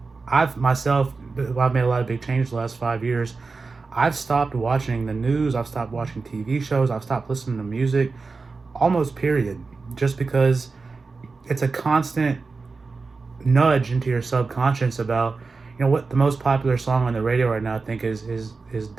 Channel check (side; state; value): left; quieter; 4.2 dB